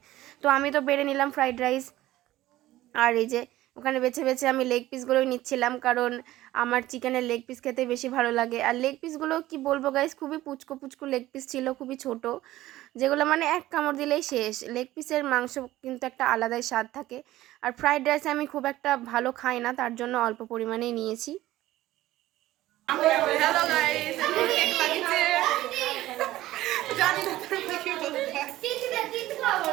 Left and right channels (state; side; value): quieter; left; 15.7 dB